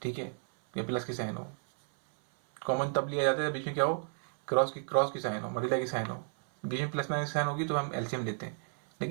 ठीक है, या प्लस की साइन हो। कॉमन तब लिया जाता है बीच में क्या हो, क्रॉस की साइन हो, मल्टीप्लाई की साइन हो, बीच में प्लस माइनस की साइन होगी तो हम एलसीएम लेते हैं।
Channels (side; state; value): left; silent; 56 dB below the other